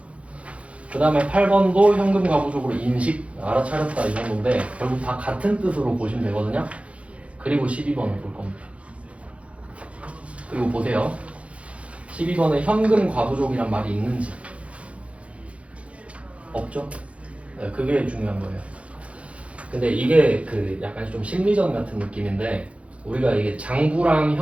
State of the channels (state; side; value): late; left; 0.063 ms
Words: 그 다음에 8번도 현금 과부족으로 인식 알아차렸다 이 정도인데 결국 다 같은 뜻으로 보시면 되거든요. 그리고 12번을 볼 겁니다. 그리고 보세요. 12번에 현금 과부족이란 말이 있는지 없죠? 네, 그게 중요한 거예요. 근데 이게 그 약간 좀 심리전 같은 느낌인데 우리가 이게 장부랑